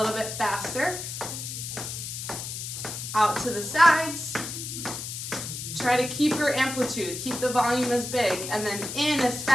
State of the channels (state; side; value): noise; left; hiss, 7 dB below the sound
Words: bit faster. Out to the sides. Try to keep your amplitude, keep the volume as big, and then in as